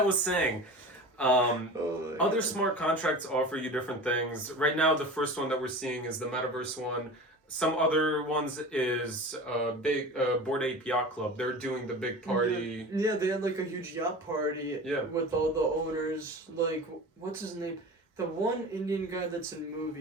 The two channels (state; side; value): normal; both; correlation 0.34